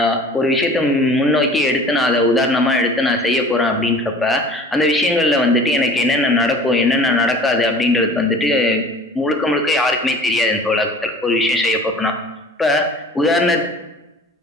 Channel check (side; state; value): both; normal; correlation 0.45